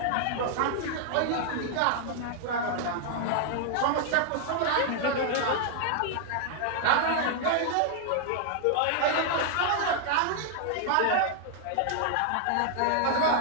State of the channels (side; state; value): both; different; correlation -0.01